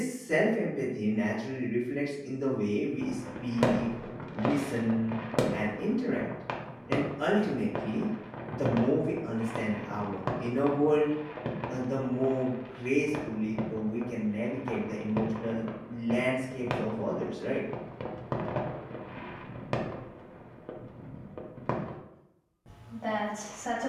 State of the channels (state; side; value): identical; both; correlation 1.00